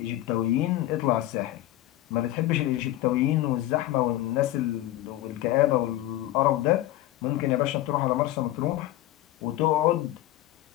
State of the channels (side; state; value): right; quieter; 15.3 dB